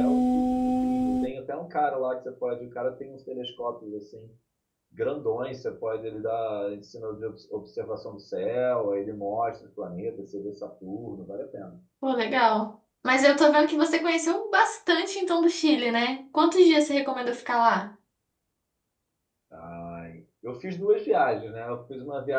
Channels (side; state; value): both; identical; correlation 1.00